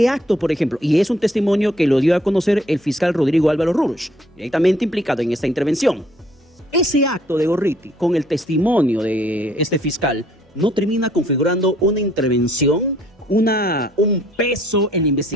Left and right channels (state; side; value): normal; both; correlation 0.63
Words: acto, por ejemplo, y es un testimonio que lo dio a conocer el fiscal Rodrigo Álvaro Rurush, directamente implicado en esta intervención. Ese acto de Gorriti, con el testimonio de este fiscal, no termina configurando una intervención, un peso en la